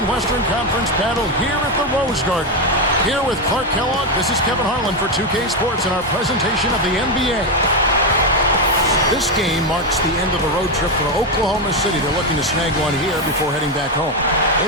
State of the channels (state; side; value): normal; both; correlation 0.08